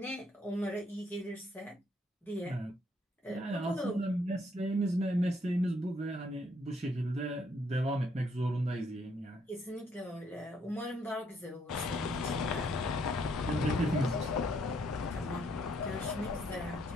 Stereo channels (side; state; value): both; normal; correlation 0.70